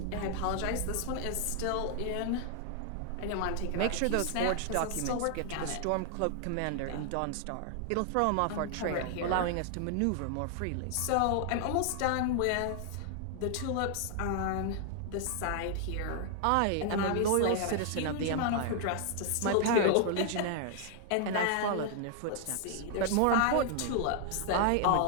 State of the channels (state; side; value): different; both; correlation 0.00